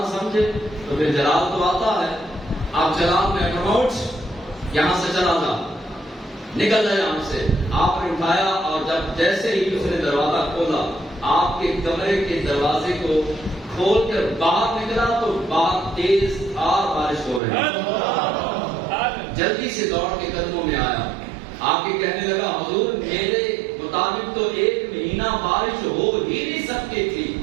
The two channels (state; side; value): drops out; left; at 17.4 s